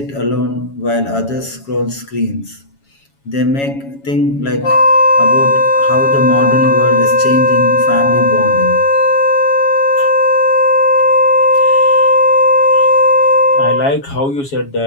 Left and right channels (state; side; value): late; right; 7.2 ms